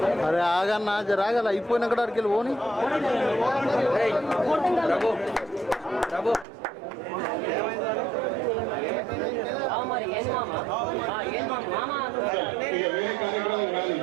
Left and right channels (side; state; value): left; drops out; at 6.5 s